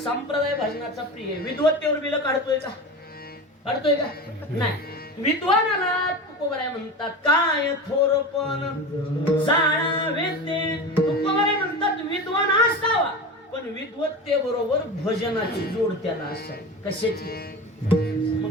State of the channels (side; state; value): both; normal; correlation 0.28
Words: भजनाचा प्रिय. विद्वत्तेवर बिल काढतोय का? काढतोय का? नाही. विद्वानाला तुकोबराय म्हणतात काय थोरपण जाणावे ते. तुकोबराय म्हणतात विद्वान असावा, पण विद्वत्ते बरोबर भजनाची जोड त्याला असावी. कशाची?